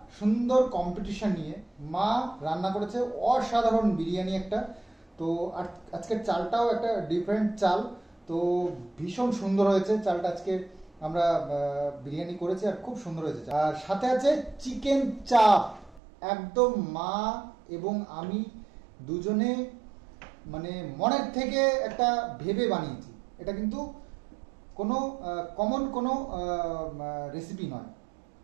সুন্দর কম্পিটিশন নিয়ে। মা রান্না করেছে অসাধারণ বিরিয়ানি একটা। তো আজকের চালটাও একটা ডিফারেন্ট চাল, তো ভীষণ সুন্দর হয়েছে চালটা। আজকে আমরা বিরিয়ানি করেছি আর খুব সুন্দর হয়েছে। আর সাথে আছে চিকেন চাপ, একদম মা এবং আমি দুজনে মানে মনের থেকে একটা ভেবে বানিয়েছি। এটা কিন্তু কোনো কমন কোনো রেসিপি নয়।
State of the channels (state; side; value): drops out; left; at 16.0 s